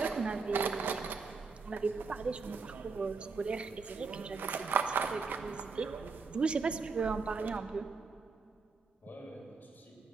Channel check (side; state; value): left; quieter; 4.6 dB